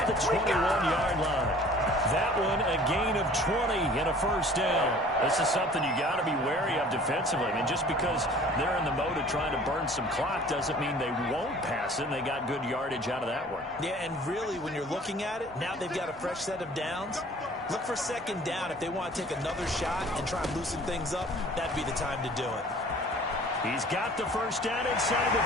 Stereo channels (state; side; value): normal; both; correlation 0.49